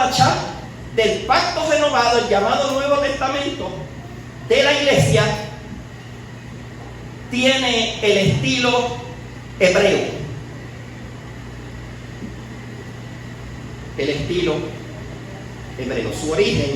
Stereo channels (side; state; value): both; identical; correlation 1.00